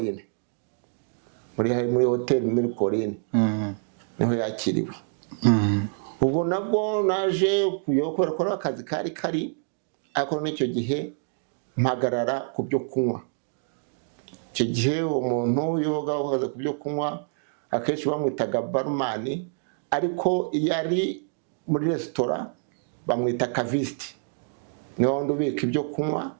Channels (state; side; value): silent; left; digital silence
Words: muri hoteli Mirikori niho yakiriwe. Ubwo nabwo naje kuyokora ko akazi kari ariko n'icyo gihe mpagarara ku byo kunywa. Icyo gihe umuntu yoga uhaze ku byo kunywa akenshi bamwitaga barman, ariko yari muri restaurant bamwita caviste. Niho wundi ubika ibyo kunywa